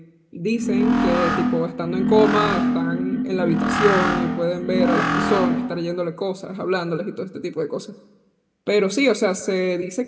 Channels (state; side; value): identical; both; correlation 1.00